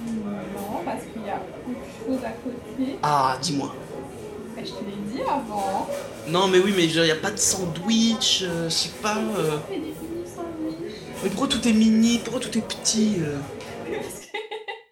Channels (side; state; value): both; identical; correlation 1.00